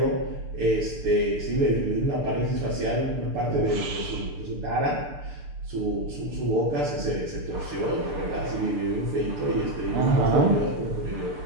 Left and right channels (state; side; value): late; left; 6.8 ms